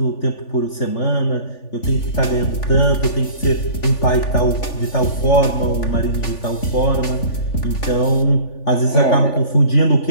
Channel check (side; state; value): right; late; 3.4 ms